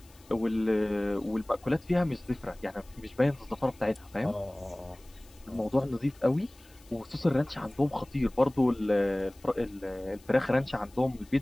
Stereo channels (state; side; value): noise; left; hiss, 27 dB below the sound